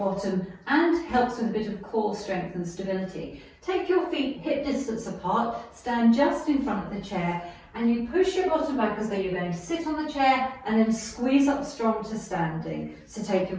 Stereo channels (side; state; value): both; identical; correlation 1.00